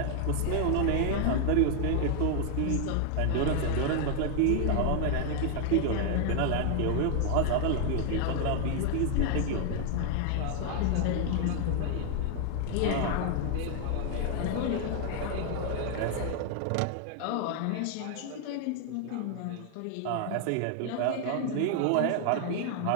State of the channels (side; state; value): both; different; correlation 0.00